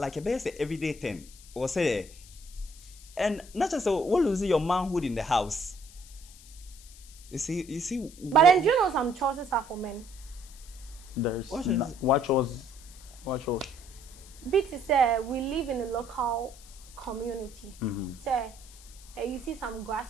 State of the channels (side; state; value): left; noise; hiss, 20 dB below the sound